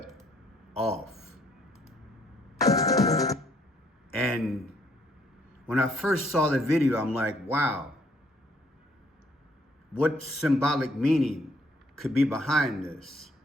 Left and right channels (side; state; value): both; normal; correlation 0.66